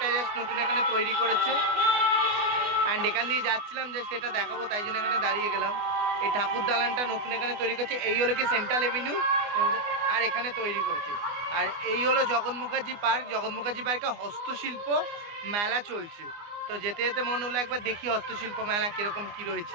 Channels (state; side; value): late; left; 24 ms